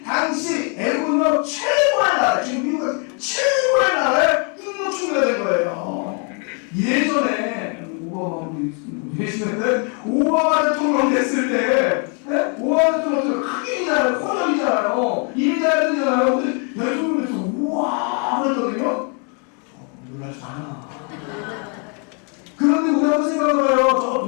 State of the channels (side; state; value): right; quieter; 38.2 dB